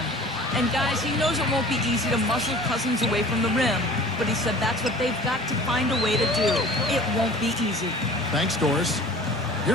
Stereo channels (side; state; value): both; normal; correlation 0.45